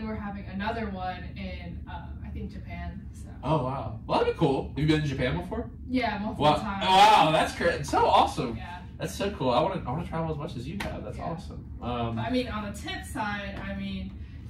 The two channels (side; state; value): both; identical; correlation 1.00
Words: we're having another one in I think Japan. So. Oh wow, well that'd be cool. Have you been to Japan before? Yeah, multiple Wow, times. wow, that's great. It's so awesome. Yeah. That's so cool. I want to travel as much as you have. That's awesome. But, I mean, on the tip side, I mean,